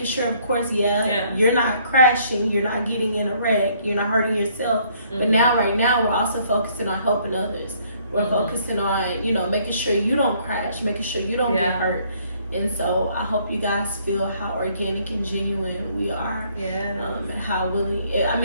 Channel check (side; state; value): both; inverted; correlation -0.64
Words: sure, of course, you're not crashing, you're not getting in a wreck, you're not hurting yourself. But right now, we're also focusing on helping others. We're focusing on, you know, making sure you don't crash, making sure you don't get hurt. And so I hope you guys feel how organic and genuine we are. Yeah. And how willing. I